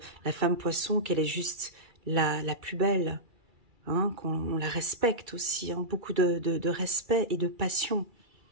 la femme poisson, qu'elle est juste la plus belle. Hein, qu'on la respecte aussi. Hein, beaucoup de respect et de passion.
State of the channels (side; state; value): left; late; 2.3 ms